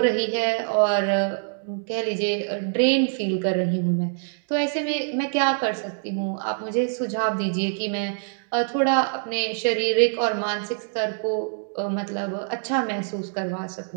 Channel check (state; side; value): silent; left; digital silence